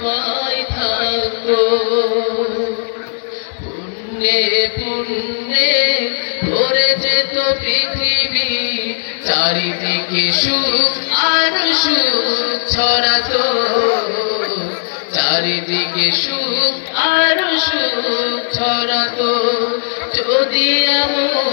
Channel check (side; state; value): right; silent; digital silence